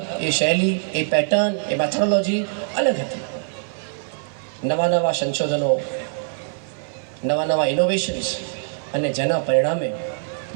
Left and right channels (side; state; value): left; silent; 57 dB below the other